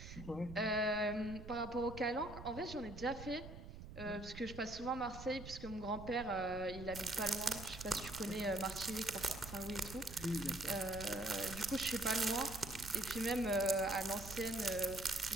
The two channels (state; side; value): noise; right; rumble, 12 dB below the sound